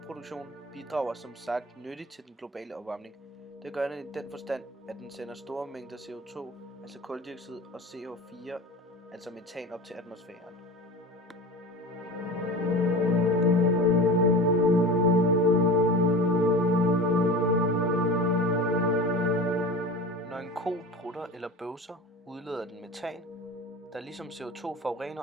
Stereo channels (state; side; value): normal; both; correlation 0.32